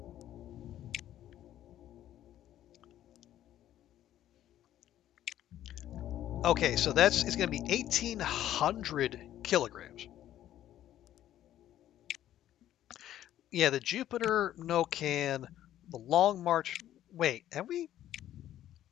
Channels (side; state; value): right; quieter; 12.3 dB